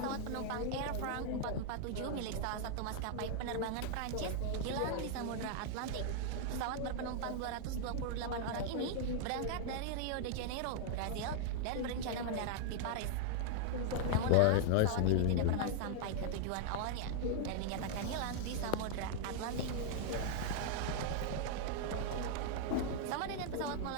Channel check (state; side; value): different; both; correlation 0.00